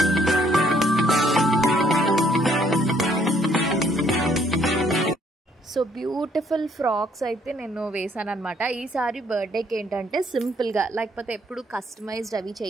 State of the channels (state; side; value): normal; both; correlation 0.66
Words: So beautiful frocks అయితే నేను వేసాను అనమాట. ఈసారి బర్త్డేకి ఏంటంటే సింపుల్గా, లేకపోతే ఎప్పుడు కస్టమైజ్డ్ అవి